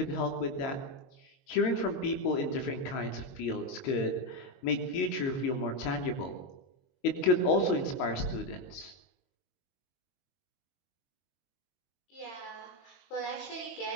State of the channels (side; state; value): right; late; 22 ms